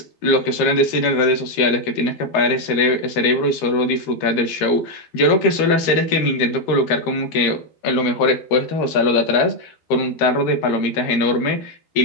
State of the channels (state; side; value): late; right; 13 ms